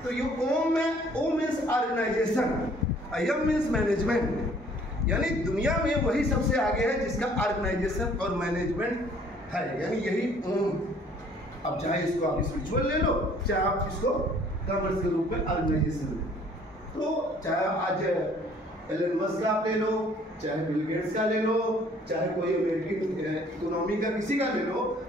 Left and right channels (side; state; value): both; normal; correlation 0.58